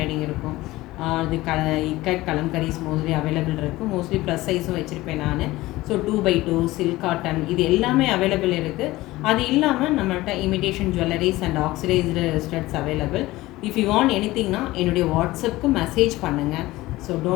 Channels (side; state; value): right; quieter; 18.3 dB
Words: இருக்கும். அது இக்கட் கலம்கரிஸ் மோஸ்ட்லி அவைலபிள் இருக்குது. மோஸ்ட்லி ப்ளஸ் சைஸும் வச்சுருப்பேன் நான். ஸோ 2x2 சில்க் காட்டன் இது எல்லாமே அவைலபிள் இருக்குது. அது இல்லாமல் நம்மள்கிட்ட imitation jewelleries and oxidised studs available. If you want எனிதிங்னா என்னுடைய வாட்ஸ்அப்புக்கு மெசேஜ் பண்ணுங்கள். So